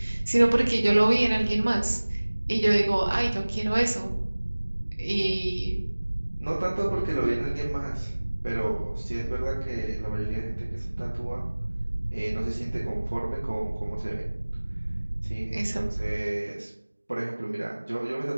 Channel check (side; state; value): both; inverted; correlation -1.00